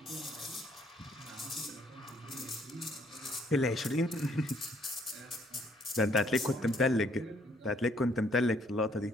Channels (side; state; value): both; normal; correlation 0.66